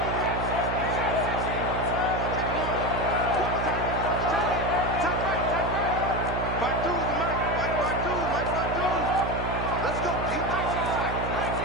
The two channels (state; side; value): noise; right; hum, 3 dB below the sound